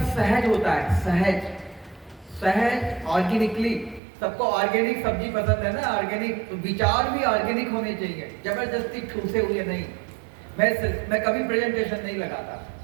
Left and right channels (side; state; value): left; drops out; at 4.0 s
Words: सहज होता है, सहज सहज ऑर्गेनिकली। सबको ऑर्गेनिक सब्जी पसंद है ना, ऑर्गेनिक, तो विचार भी ऑर्गेनिक होने चाहिए, जबरदस्ती ठूसे हुए नहीं। मैं कभी प्रेजेंटेशन नहीं लगाता,